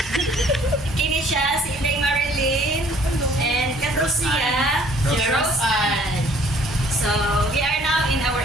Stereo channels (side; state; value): both; normal; correlation 0.58